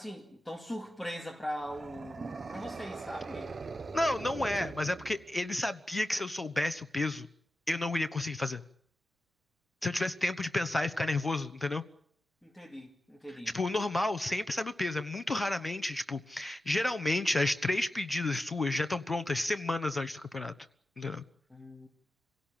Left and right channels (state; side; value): normal; both; correlation 0.92